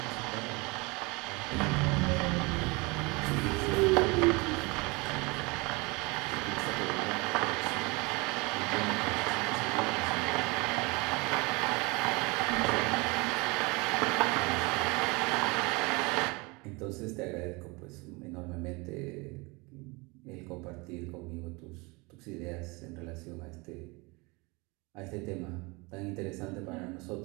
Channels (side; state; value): left; quieter; 26.5 dB